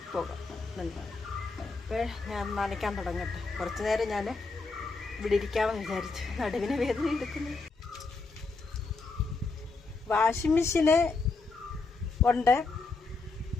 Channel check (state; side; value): quieter; right; 3.9 dB